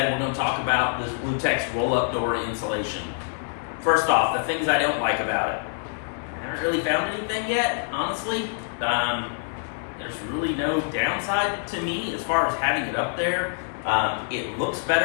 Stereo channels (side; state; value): right; silent; 61 dB below the other